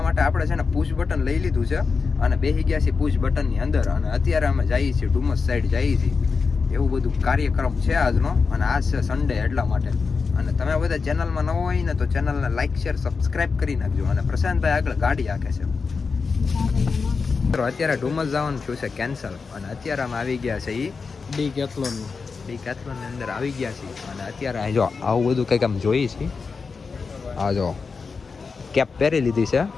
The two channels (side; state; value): right; quieter; 4.9 dB